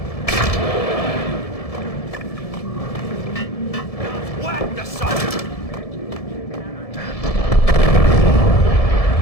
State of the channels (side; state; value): right; late; 1.7 ms